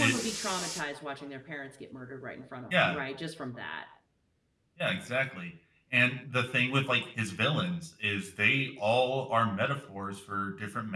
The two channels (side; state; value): both; identical; correlation 1.00